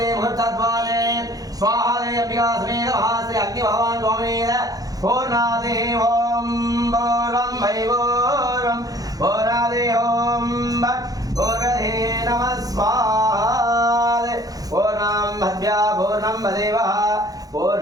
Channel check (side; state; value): left; late; 0.18 ms